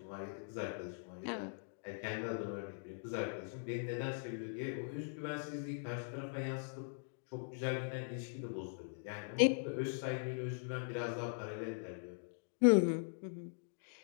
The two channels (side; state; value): right; silent; digital silence